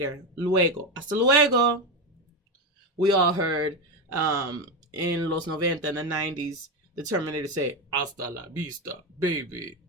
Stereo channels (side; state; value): both; normal; correlation 0.13